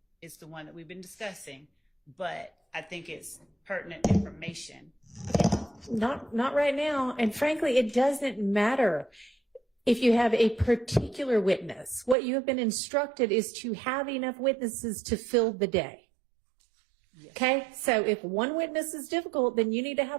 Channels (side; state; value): left; drops out; at 12.2 s